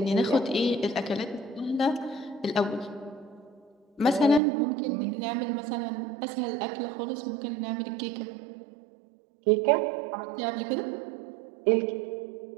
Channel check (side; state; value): left; drops out; at 4.4 s